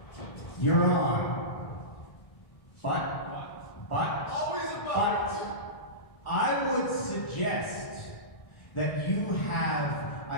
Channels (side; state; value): right; late; 1.6 ms